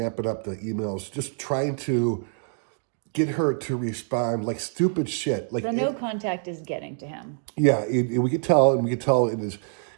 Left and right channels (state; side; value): silent; left; 57 dB below the other